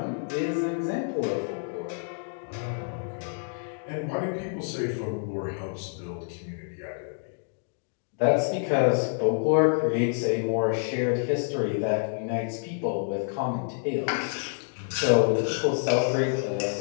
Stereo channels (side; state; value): right; silent; digital silence